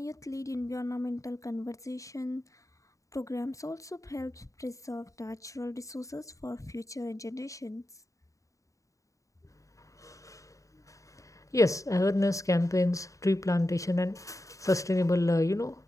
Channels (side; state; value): right; late; 0.16 ms